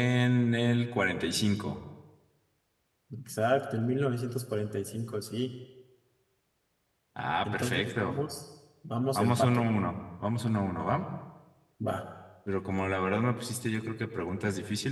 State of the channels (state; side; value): identical; both; correlation 1.00